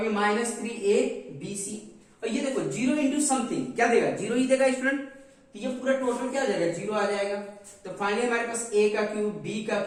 ये माइनस 3a बी सी। और ये देखो जीरो इंटू समथिंग क्या देगा, जीरो ही देगा स्टूडेंट। तो ये पूरा टोटल क्या आ जाएगा, जीरो आ जाएगा। तो फाइनली हमारे पास ए का क्यूब बी का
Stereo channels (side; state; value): both; identical; correlation 1.00